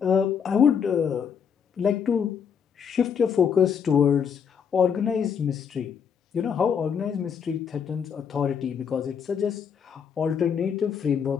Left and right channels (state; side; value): quieter; right; 7.2 dB